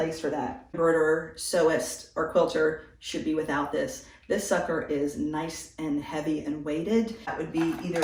for that. Embroiderer, sewist, or quilter should be without this. This sucker is nice and heavy and weighted. That would be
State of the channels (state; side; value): identical; both; correlation 1.00